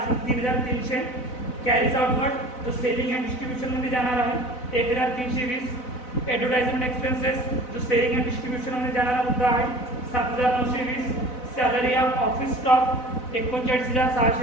कॅरीज आउटवर्ड जो सेलिंग अँड डिस्ट्रीब्युशनमध्ये जाणार आहे 1,320, advertisement expenses जो सेलिंग अँड डिस्ट्रीब्युशनमध्ये जाणारा मुद्दा आहे 7,920, सॅलरी ऑफ ऑफिस स्टॉक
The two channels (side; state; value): right; late; 4.0 ms